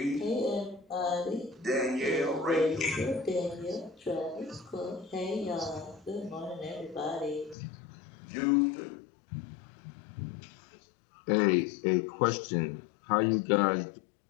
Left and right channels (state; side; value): drops out; right; at 7.6 s